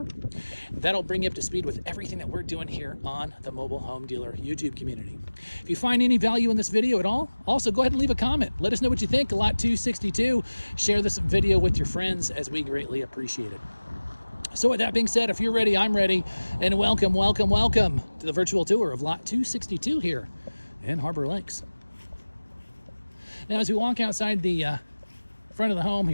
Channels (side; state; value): both; inverted; correlation -1.00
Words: That'll bring you up to speed with everything that we're doing here on the Mobile Home Dealer YouTube community. If you find any value in this video at all, also go ahead and leave a comment. Let us know what you think. Lot 262. Share this video with your friends as we greatly appreciate it. So with that being said, if you're ready, I'm ready, and welcome to the virtual tour of Lot 262 here in Harbor Lakes. Now, as we walk outside the front of the home